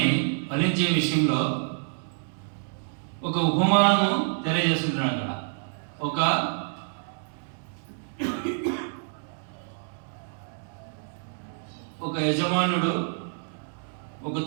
ఫలించే విషయంలో ఒక ఉపమానము తెలియజేస్తుంటున్నాడు. అక్కడ ఒక యజమానుడు ఒక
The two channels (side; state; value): left; silent; digital silence